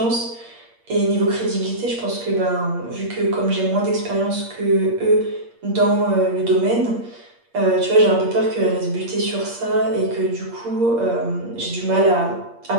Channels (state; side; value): late; left; 8.6 ms